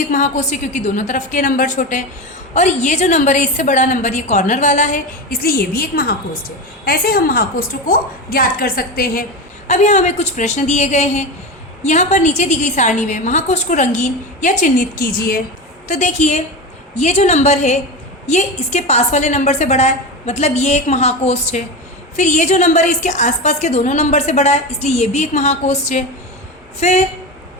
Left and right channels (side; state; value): both; normal; correlation 0.22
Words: महाकोष्ठ है क्योंकि दोनों तरफ के नंबर छोटे हैं। और ये जो नंबर है इससे बड़ा नंबर ये कॉर्नर वाला है, इसलिए ये भी एक महाकोष्ठ है। ऐसे हम महाकोष्ठों को ज्ञात कर सकते हैं। अब यहाँ हमें कुछ प्रश्न दिए गए हैं। यहाँ पर नीचे दी गई सारणी में महाकोष्ठ को रंगीन या चिन्हित कीजिए। तो देखिए ये जो नंबर है ये इसके पास वाले नंबर से बड़ा है, मतलब ये एक महाकोष्ठ है। फिर ये जो नंबर है इसके आसपास के दोनों नंबर से बड़ा है, इसलिए ये भी एक महाकोष्ठ है। फिर